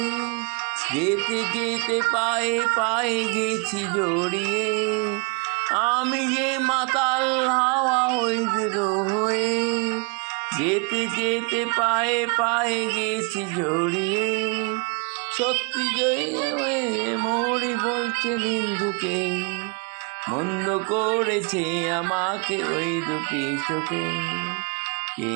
যেতে যেতে পায়ে পায়ে গেছি জড়িয়ে। আমি যে মাতাল হাওয়া ওই দুটো হয়ে, যেতে যেতে পায়ে পায়ে গেছি জড়িয়ে। সত্যি জয় মরি বলছে নিন্দুকে, মন্দ করেছে আমাকে ওই দুটি চোখে। কে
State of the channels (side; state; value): left; quieter; 33.9 dB